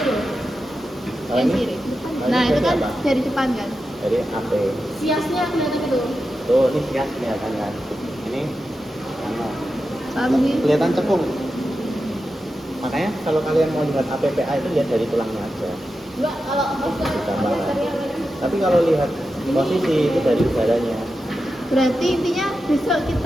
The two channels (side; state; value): both; normal; correlation 0.90